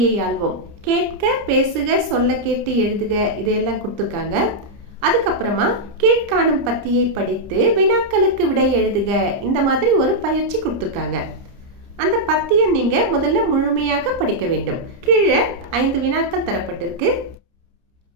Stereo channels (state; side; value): late; left; 30 ms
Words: ஆள்வோம். கேட்க, பேசுக, சொல்ல கேட்டு எழுதுக இதையெல்லாம் கொடுத்துருக்காங்க. அதுக்கப்புறமா கீழ்காணும் பத்தியை படித்து வினாக்களுக்கு விடை எழுதுக இந்த மாதிரி ஒரு பயிற்சி கொடுத்துருக்காங்க. அந்த பத்தியை நீங்க முதல்ல முழுமையாக படிக்க வேண்டும். கீழே 5 வினாக்கள் தரப்பட்டிருக்கு.